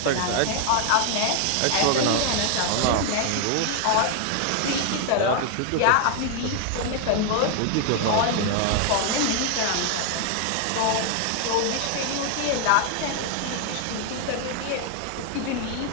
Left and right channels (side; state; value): both; different; correlation 0.00